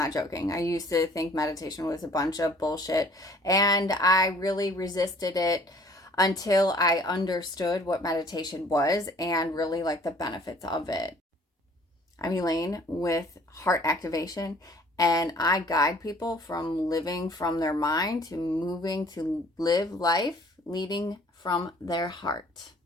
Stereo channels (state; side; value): normal; both; correlation 0.55